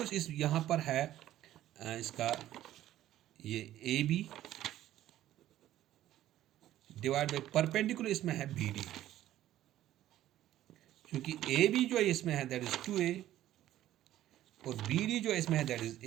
इस यहाँ पर है इसका ये A B divide by perpendicular इसमें है बी डी, क्योंकि ए बी जो है इसमें है दैट इज 2a और बी डी जो है इसमें है दैट इज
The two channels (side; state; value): left; quieter; 13.3 dB